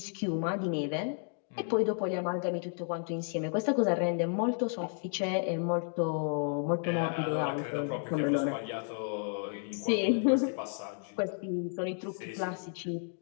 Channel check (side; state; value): right; silent; 56 dB below the other